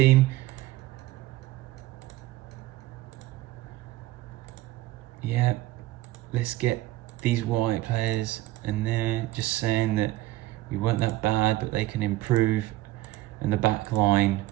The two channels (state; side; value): quieter; left; 17.1 dB